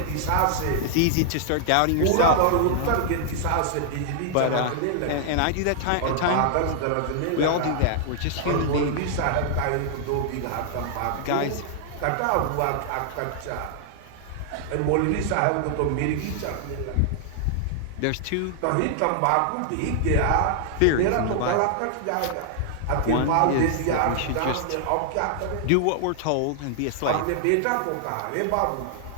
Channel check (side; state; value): both; different; correlation -0.01